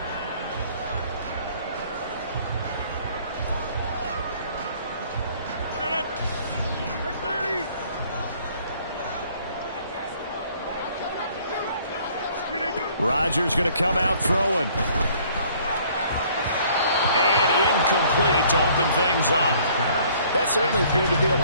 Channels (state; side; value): inverted; both; correlation -0.58